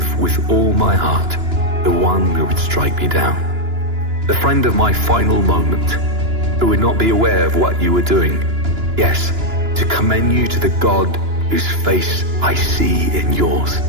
with all my heart the one who would strike me down. The friend of my final moment, who would not be aware of what you were doing. Yes, to commend you to the God whose face I see in yours.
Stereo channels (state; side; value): late; left; 2.9 ms